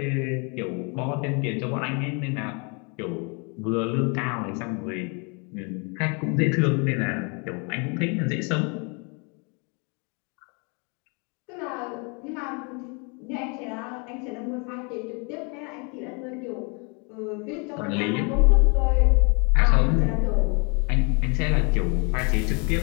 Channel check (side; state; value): right; quieter; 33.8 dB